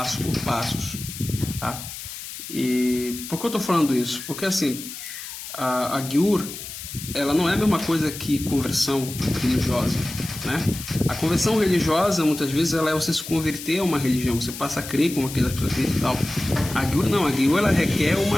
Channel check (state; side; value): noise; left; hiss, 10 dB below the sound